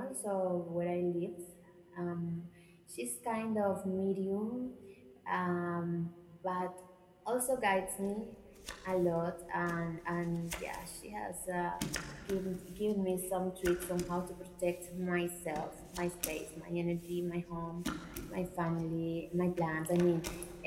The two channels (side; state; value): both; identical; correlation 1.00